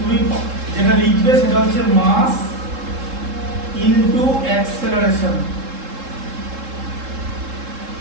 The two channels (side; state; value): left; late; 3.7 ms